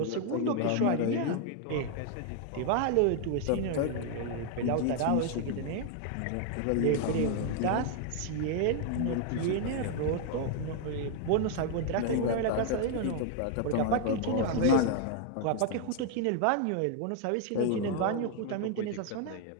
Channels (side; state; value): both; different; correlation 0.00